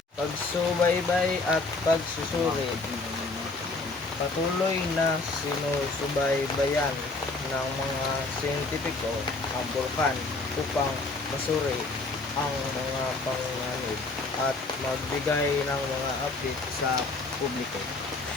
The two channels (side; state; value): right; quieter; 3.5 dB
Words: Pagsubaybay at pagsusuri. Patuloy na sinusubaybayan ng mga siyentipiko ang bulkan upang masuri ang mga panganib at magbigay ng mga update sa publiko.